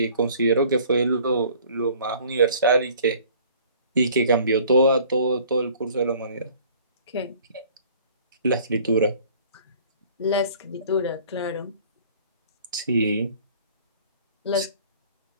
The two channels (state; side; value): inverted; both; correlation -0.52